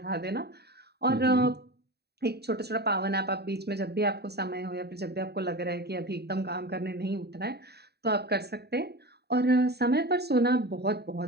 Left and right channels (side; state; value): left; late; 0.48 ms